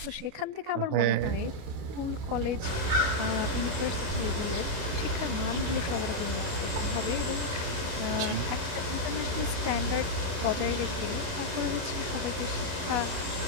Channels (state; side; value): late; left; 28 ms